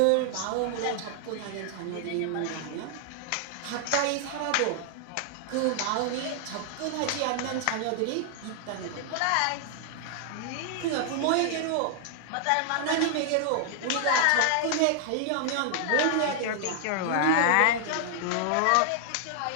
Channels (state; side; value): different; both; correlation 0.00